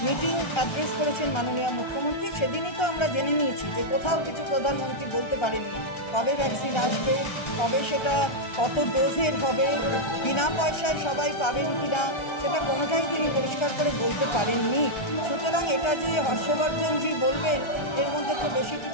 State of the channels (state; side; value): late; right; 1.3 ms